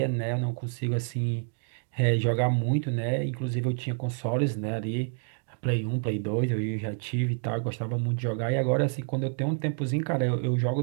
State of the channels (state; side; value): silent; left; 59 dB below the other